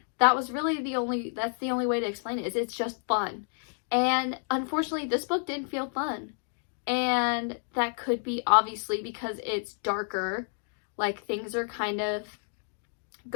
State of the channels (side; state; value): right; silent; 58 dB below the other